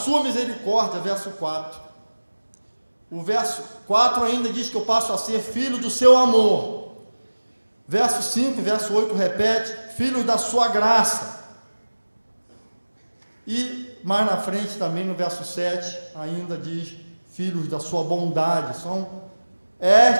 misericórdia, verso 4. O verso 4 ainda diz que eu passo a ser filho do seu amor. Verso 5 e verso 8 repete, filhos da sua graça. E mais na frente também no verso 7 ainda diz filhos da sua bondade. São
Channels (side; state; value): both; inverted; correlation -1.00